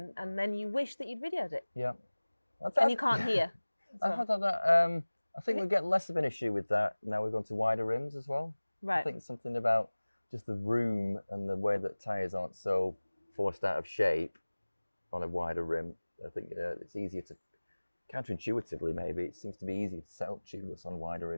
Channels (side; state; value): both; inverted; correlation -1.00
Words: and then you wish that you'd videoed it. Yeah. And you can't hear. I think we get less of an issue with that now we've gone to wider rims as well. Right. I think something about just the room and the way that tyres aren't so forced out of shape on a wider rim. I think it's easier to, counterintuitively maybe, it seems to be easier to set up tubeless on wider